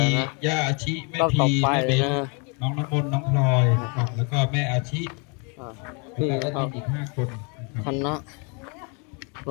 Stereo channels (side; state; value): right; quieter; 34.6 dB